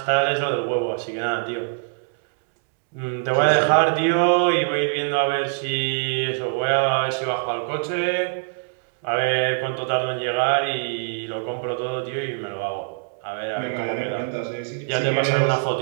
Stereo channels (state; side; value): silent; left; digital silence